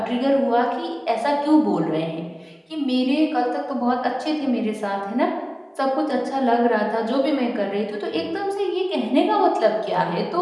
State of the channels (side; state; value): both; identical; correlation 1.00